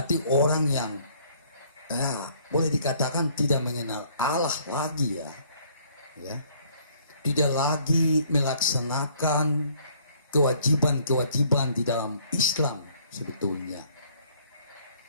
orang yang boleh dikatakan tidak mengenal Allah lagi ya, tidak lagi melaksanakan kewajiban-kewajiban di dalam Islam. Sebetulnya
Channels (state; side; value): inverted; both; correlation -0.61